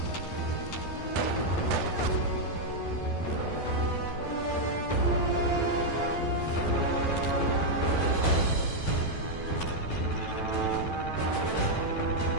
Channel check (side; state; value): right; late; 12 ms